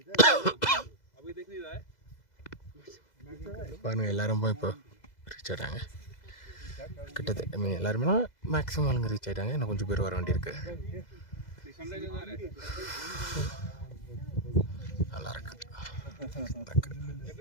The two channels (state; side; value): late; right; 2.0 ms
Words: अभी देख नहीं रहा है பாருங்க. எல்லாரும் இப்போ ரீச் ஆகிட்டாங்க. கிட்டத்தட்ட மீன் எல்லாருமே மேக்ஸிமம் ஆளுங்க ரீச் ஆகிட்டாங்க. இன்னும் கொஞ்சம் பேர் வர வேண்டியிருக்கு. நல்லா இருக்கு.